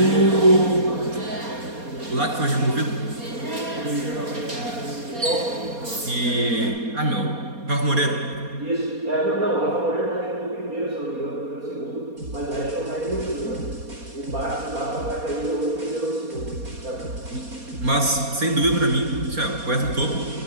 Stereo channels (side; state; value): left; late; 4.2 ms